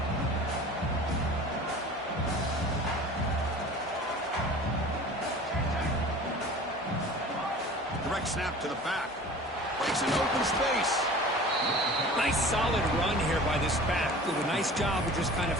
Direct snap to the back. Breaks an open space. Nice solid run here by this back. Did a nice job of just kind of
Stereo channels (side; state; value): both; normal; correlation 0.41